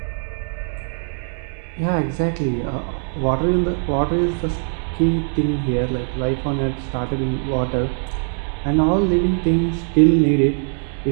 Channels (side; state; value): left; silent; 65 dB below the other